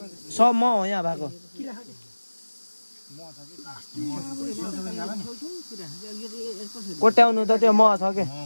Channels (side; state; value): both; inverted; correlation -1.00